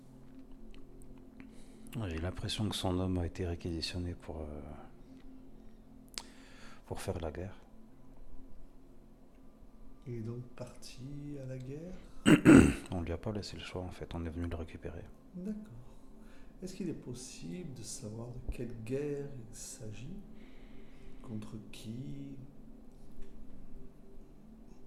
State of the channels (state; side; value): identical; both; correlation 1.00